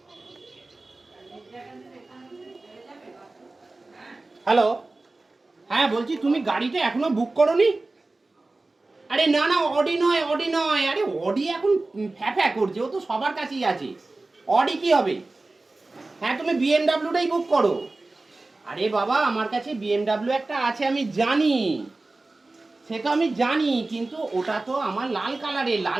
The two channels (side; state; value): left; quieter; 3.2 dB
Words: হ্যালো, হ্যাঁ বলছি তুমি গাড়িটা এখনো বুক করোনি? আরে না না, অডি নয়, অডি নয়। আরে অডি এখন ফ্যাফ্যা করছে, ও তো সবার কাছেই আছে। অডি কি হবে? হ্যাঁ তুমি বিএমডাব্লিউটাই বুক করো। আরে বাবা, আমার কাছে বিএমডাব্লিউ একটা আছে, আমি জানি, সে তো আমি জানি, কিন্তু ওটা তো আমার লাল